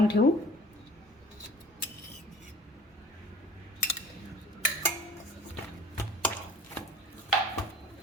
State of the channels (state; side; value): normal; both; correlation 0.46